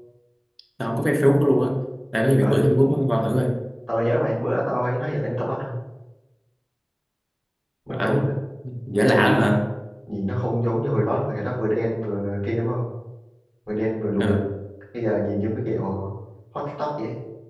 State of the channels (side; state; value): both; identical; correlation 1.00